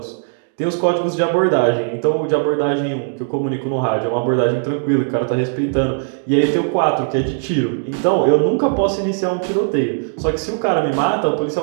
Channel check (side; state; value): left; silent; digital silence